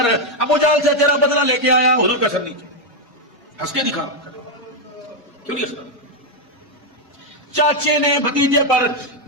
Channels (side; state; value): both; normal; correlation 0.03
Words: ابو جہل سے تیرا بدلہ لے کے آیا۔ حضور کا سر نیچے ہنس کے دکھا، کیوں نہیں ہنسنا؟ چاچے نے بھتیجے پر